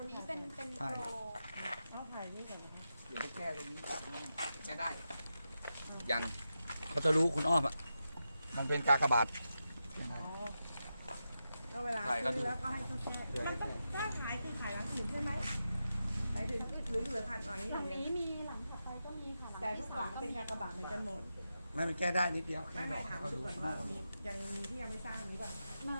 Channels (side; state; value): both; inverted; correlation -0.89